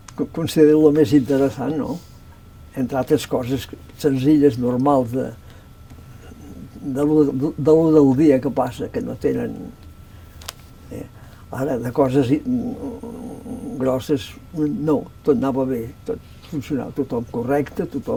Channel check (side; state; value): both; identical; correlation 1.00